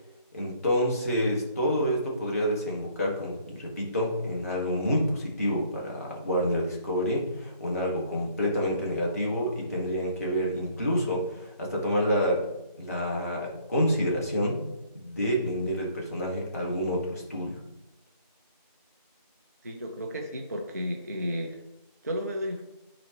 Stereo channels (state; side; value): inverted; both; correlation -0.59